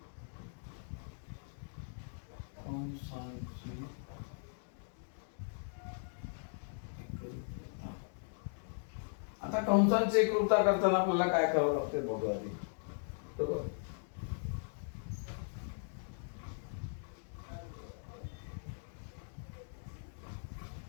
कंसांची एकरूपता. आता कंसांची एकरूपता करताना आपल्याला काय करावं लागते बघूया आधी. बरोबर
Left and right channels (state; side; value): silent; right; digital silence